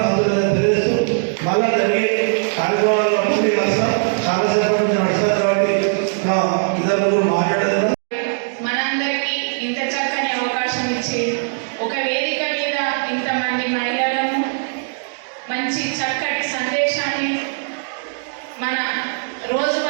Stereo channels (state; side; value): silent; left; digital silence